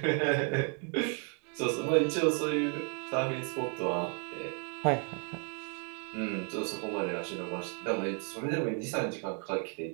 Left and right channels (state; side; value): quieter; left; 36.9 dB